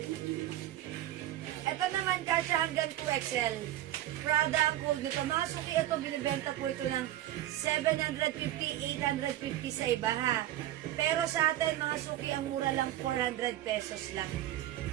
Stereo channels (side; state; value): left; quieter; 13.8 dB